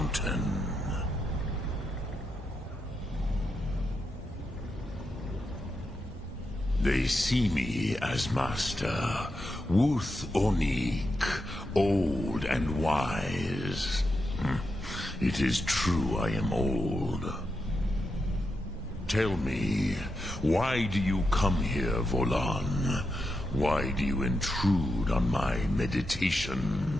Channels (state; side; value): normal; both; correlation 0.86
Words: They see me as master, Wuth Onik, old and wise. It is true I am old. Tell me, why do you come here, Volan? Why do you intrude on my meditation?